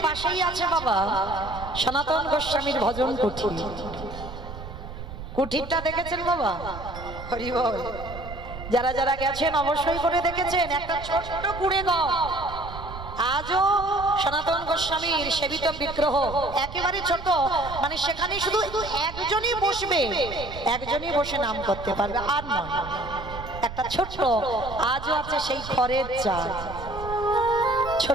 পাশেই আছে বাবা সনাতন গোস্বামীর ভজন কুঠির। কুঠিরটা দেখেছেন বাবা? হরি বল। যারা যারা গেছেন অবশ্যই করে দেখেছেন, একটা ছোট্ট কুড়ে ঘর, আজও সনাতন গোস্বামীর সেবিত বিগ্রহ, একেবারে ছোট, মানে সেখানে শুধু একজনই বসবে, একজনই বসে নাম করতে পারবে, আর নয়। একটা ছোট্ট আজও আছে সেই খড়ের চাল,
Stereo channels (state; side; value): noise; right; rumble, 11 dB below the sound